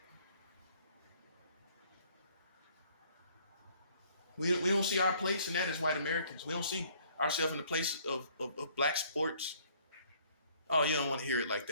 We don't see our place in that as white Americans. We don't see ourselves in the place of black sports. Oh, you don't want to hear it like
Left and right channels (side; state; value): both; inverted; correlation -0.60